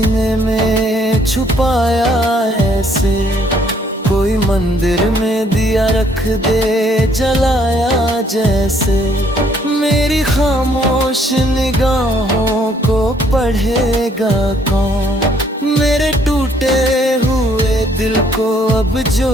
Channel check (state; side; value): normal; both; correlation 0.65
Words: में छुपाया ऐसे, कोई मंदिर में दिया रख दे जलाया जैसे। मेरी खामोश निगाहों को पढ़ेगा कौन, मेरे टूटे हुए दिल को अब